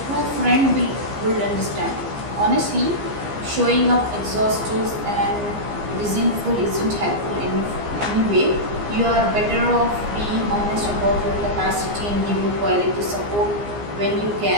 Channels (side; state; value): left; late; 15 ms